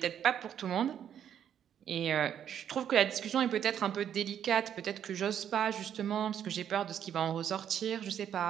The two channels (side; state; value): left; quieter; 9.4 dB